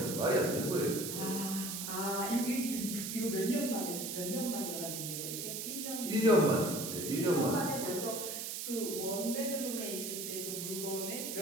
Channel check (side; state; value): right; noise; hiss, 4 dB below the sound